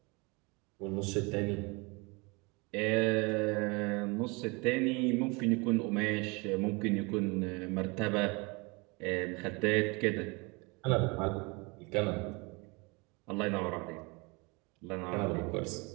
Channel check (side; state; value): left; quieter; 28.2 dB